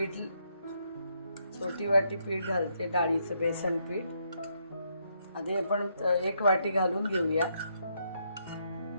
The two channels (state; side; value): inverted; both; correlation -0.75